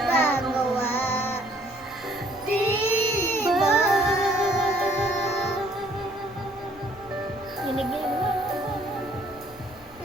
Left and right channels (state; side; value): noise; right; hum, 28 dB below the sound